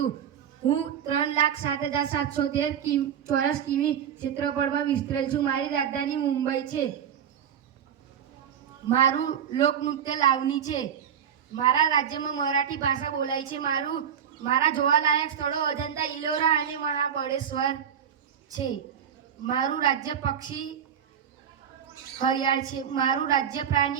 હું 3,07,713 ચોરસ કિમી ક્ષેત્રફળમાં વિસ્તરેલ છું. મારી રાજધાની મુંબઈ છે. મારું લોકનૃત્ય લાવણી છે. મારા રાજ્યમાં મરાઠી ભાષા બોલાય છે. મારા જોવાલાયક સ્થળો અજંતા, ઇલોરા અને મહાબળેશ્વર છે. મારું રાજ્ય પક્ષી હરિયાળ છે. મારું રાજ્ય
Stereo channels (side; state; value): left; quieter; 8.6 dB